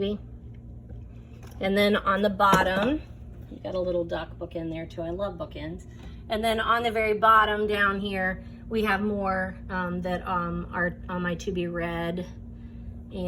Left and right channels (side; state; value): both; identical; correlation 1.00